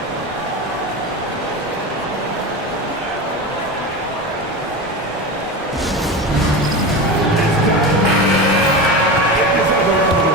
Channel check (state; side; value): normal; both; correlation 0.24